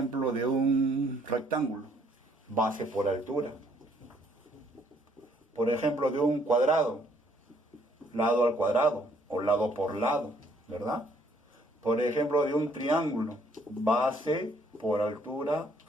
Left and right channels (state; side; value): normal; both; correlation 0.65